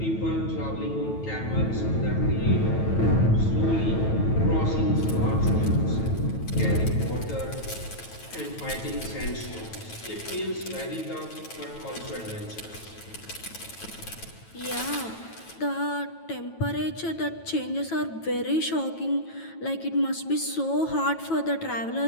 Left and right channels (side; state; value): right; late; 9.2 ms